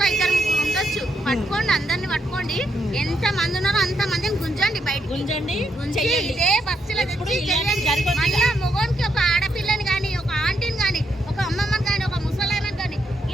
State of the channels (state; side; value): normal; both; correlation 0.79